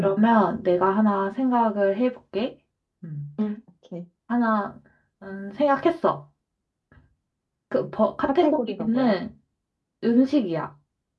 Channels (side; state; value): both; identical; correlation 1.00